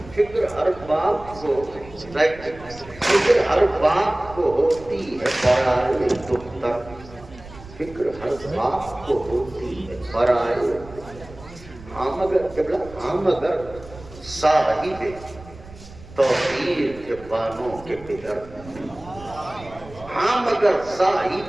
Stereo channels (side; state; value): right; noise; rumble, 18 dB below the sound